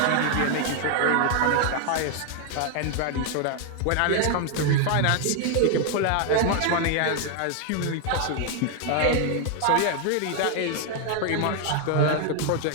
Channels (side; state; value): both; different; correlation 0.00